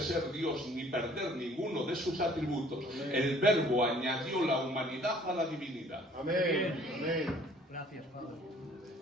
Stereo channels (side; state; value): both; normal; correlation 0.56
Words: Dios ni perder ninguno de sus atributos, amén, el Verbo añadió la humanidad a la divinidad. Amén. Amén. Gracias, Padre.